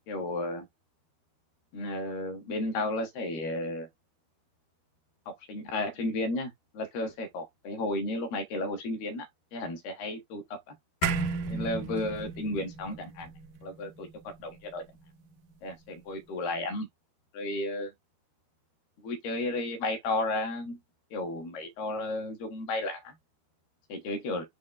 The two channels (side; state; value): right; late; 13 ms